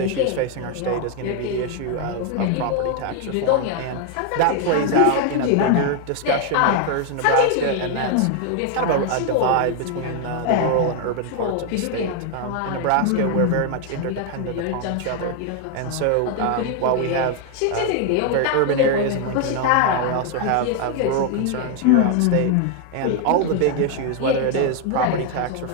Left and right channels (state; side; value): different; both; correlation 0.01